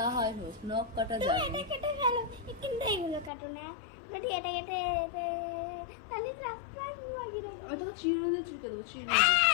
হয় হোক নখ কাটা যাবে না কেটে ফেলো কিন্তু এইগুলো কাটো না যদি এটা কেটে তাহলে আমি তোকে চিরুনি দিয়ে চুলকে দেবো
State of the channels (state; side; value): drops out; right; at 3.3 s